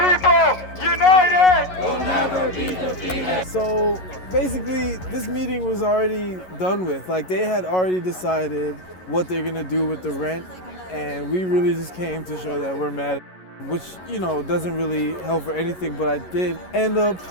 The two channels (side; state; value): right; late; 11 ms